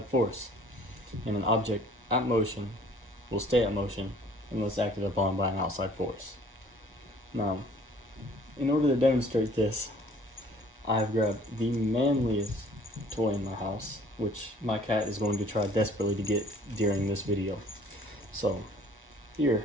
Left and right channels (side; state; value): both; normal; correlation 0.54